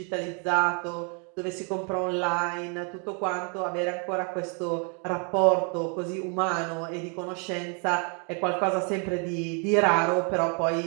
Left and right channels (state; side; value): quieter; left; 37.5 dB